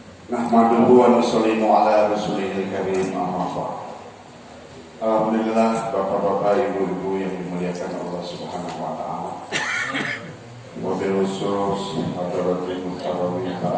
wa nusallimu ala rasulihil karim, amma ba'd. Alhamdulillah, bapak-bapak, ibu-ibu yang dimuliakan Allah Subhanahu wa taala. Wabil khusus hadirin muhtaromin,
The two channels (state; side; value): identical; both; correlation 1.00